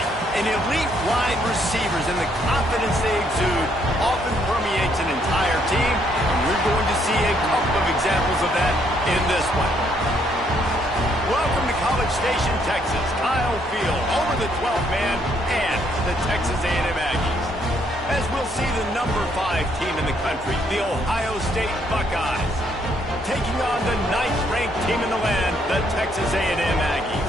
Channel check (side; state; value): both; normal; correlation 0.70